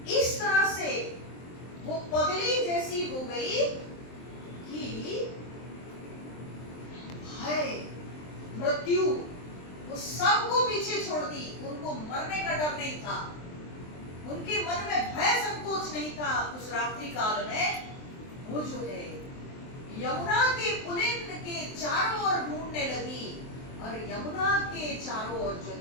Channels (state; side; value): late; right; 23 ms